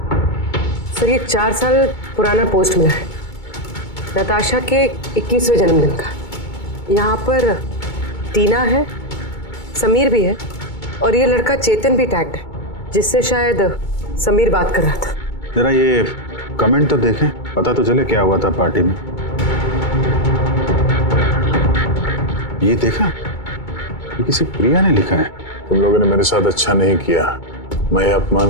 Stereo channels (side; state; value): right; late; 2.2 ms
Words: सर ये 4 साल पुराना पोस्ट मिला है नताशा के 21वें जन्मदिन का। यहाँ पर टीना है, समीर भी है और ये लड़का चेतन भी टैग्ड है, जिससे शायद समीर बात कर रहा था। जरा ये कमेंट तो देखें, पता तो चले क्या हुआ था पार्टी में। ये देखा, ये किसी प्रिया ने लिखा है। तुम लोगों ने मेरे साथ अच्छा नहीं किया, मैं ये